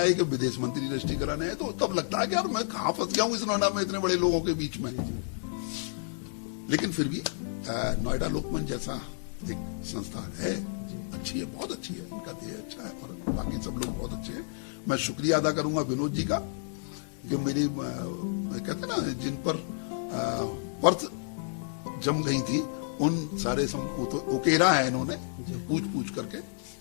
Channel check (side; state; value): right; silent; 58 dB below the other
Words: कि विदेश मंत्री रजिस्ट्री कराने आए, तो तब लगता है कि यार मैं कहाँ फंस गया हूँ इस नोएडा में इतने बड़े लोगों के बीच में। लेकिन फिर भी नोएडा लोकमंच जैसा एक संस्था है, अच्छी है, बहुत अच्छी है, उनका ध्येय अच्छा है और बाकी सब लोग बहुत अच्छे हैं। मैं शुक्रिया अदा करूंगा विनोद जी का कि मेरी कहते ना जिन पर पर्थ जम गई थी उन सारे उकेरा है इन्होंने पूछ करके।